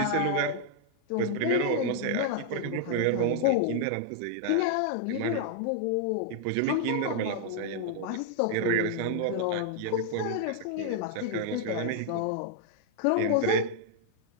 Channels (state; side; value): different; both; correlation 0.00